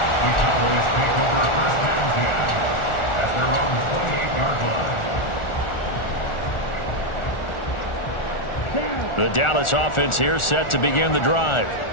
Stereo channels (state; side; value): late; right; 1.4 ms